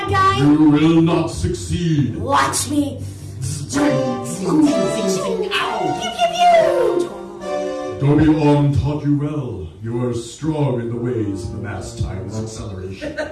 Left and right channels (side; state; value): both; identical; correlation 1.00